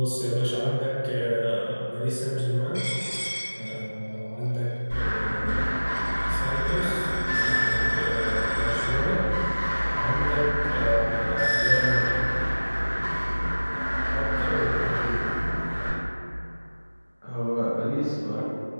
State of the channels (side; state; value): both; inverted; correlation -1.00